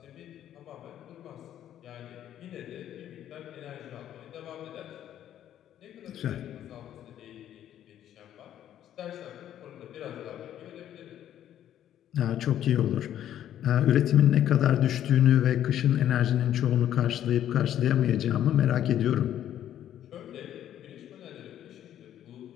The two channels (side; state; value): right; quieter; 11.1 dB